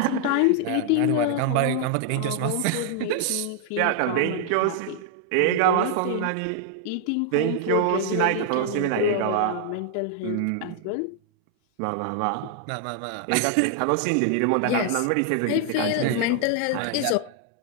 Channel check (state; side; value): different; both; correlation 0.00